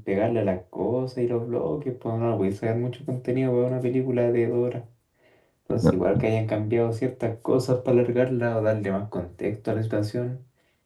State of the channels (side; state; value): both; identical; correlation 1.00